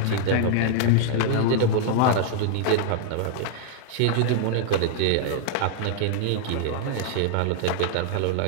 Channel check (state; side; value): different; both; correlation -0.01